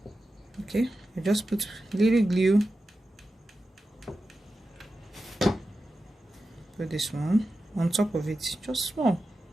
Okay, I just put little glue. Put this one on top of it, just small.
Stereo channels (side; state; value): both; normal; correlation 0.92